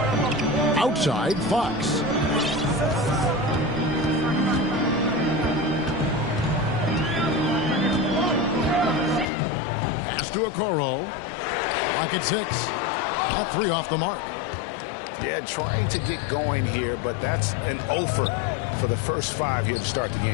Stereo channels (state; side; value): drops out; right; at 9.2 s